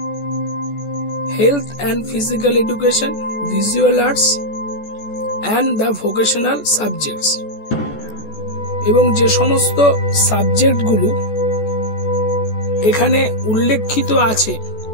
health and physical education, visual arts and the vocational subjects. এবং যে সমস্ত সাবজেক্টগুলো এখানে উল্লেখিত আছে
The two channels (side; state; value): right; late; 14 ms